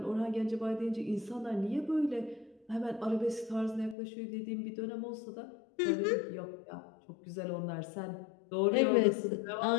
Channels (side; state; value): right; drops out; at 4.0 s